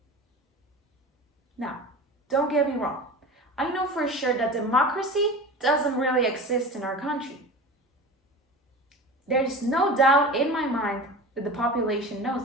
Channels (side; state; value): both; normal; correlation 0.33